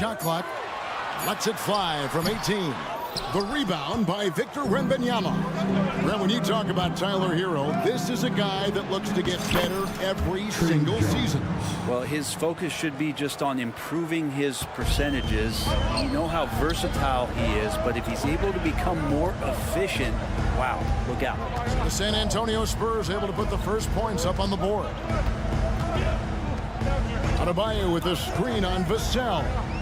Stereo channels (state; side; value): identical; both; correlation 1.00